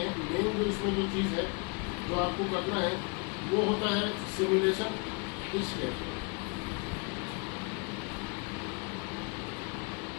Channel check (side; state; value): right; quieter; 32.4 dB